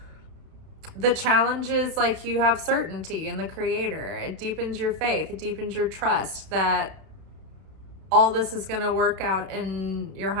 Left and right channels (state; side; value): late; left; 31 ms